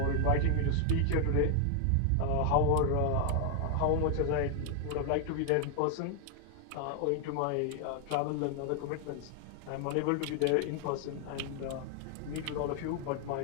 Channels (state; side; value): different; both; correlation 0.00